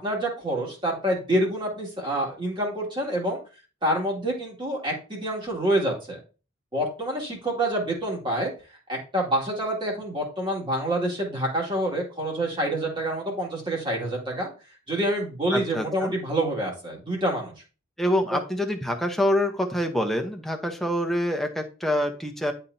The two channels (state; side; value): normal; both; correlation 0.51